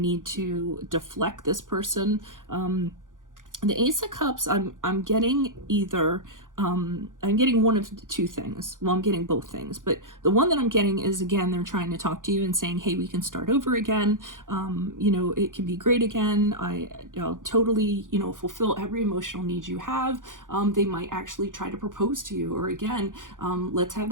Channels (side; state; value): left; late; 0.88 ms